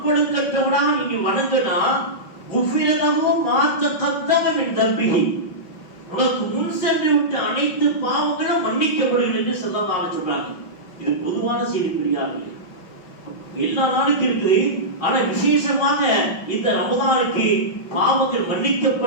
நீங்க வணங்கினா குஃபிரலஹு மா தகத்தம மின் தம்பிஹி, உனக்கு முன் சென்று விட்ட அனைத்து பாவங்களும் மன்னிக்கப்படுகிறது என்று ஸல்லல்லாஹு அலைஹி சொல்றாங்க. இது பொதுவான செய்தி பெரியார்களே. எல்லா நாளுக்கும் இருக்குது, ஆனா விசேஷமாக இந்த ரமதானுக்கு பாவங்கள்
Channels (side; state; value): right; late; 5.6 ms